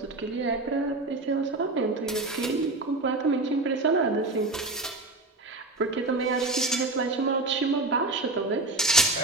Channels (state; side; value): quieter; left; 3.0 dB